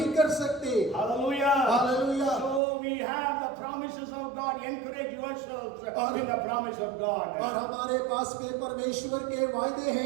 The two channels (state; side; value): drops out; left; at 2.6 s